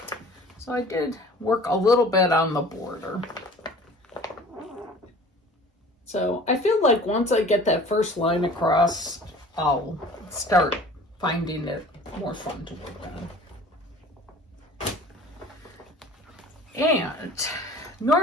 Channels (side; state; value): both; normal; correlation 0.46